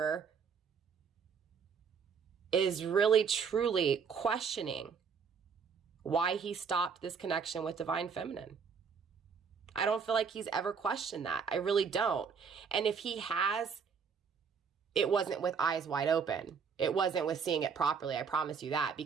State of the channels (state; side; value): quieter; left; 6.1 dB